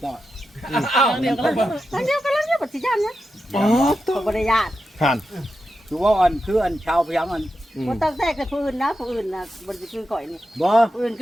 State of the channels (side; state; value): both; normal; correlation 0.89